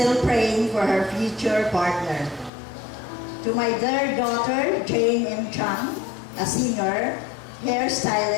praying for her future partner. To my third daughter, Jane M. Chang, a singer,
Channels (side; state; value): right; drops out; at 2.5 s